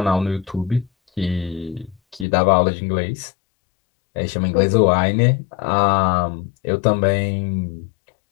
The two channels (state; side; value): drops out; right; at 2.2 s